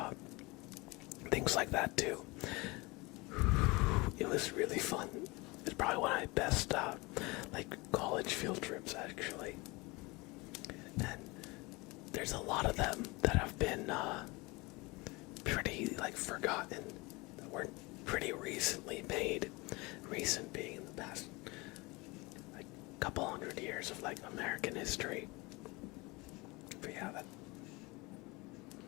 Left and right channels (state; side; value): quieter; right; 24.7 dB